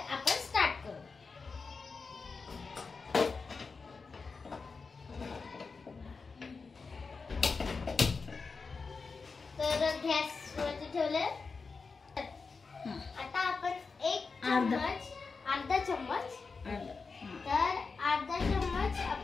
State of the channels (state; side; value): quieter; right; 4.6 dB